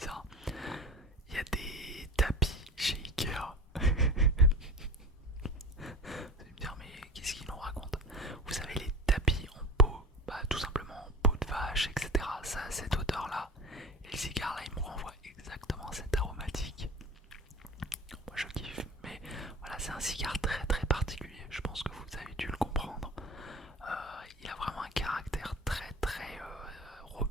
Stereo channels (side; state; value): both; normal; correlation 0.34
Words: Il y a des tapis chez Ikea. Vous allez me dire, mais qu'est-ce qu'il nous raconte? Vous savez, les tapis en peau, bah, tout simplement en peau de vache, etc. Ça a cette odeur-là. Et le cigare là, il me renvoie exactement cette aromatique. Moi je kiffe, mais voilà, c'est un cigare très très particulier. Je pense que vous avez dû le comprendre. Il a vraiment un caractère très très